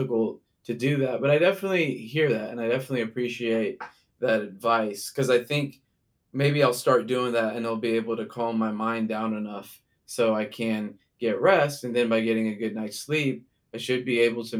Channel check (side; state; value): both; identical; correlation 1.00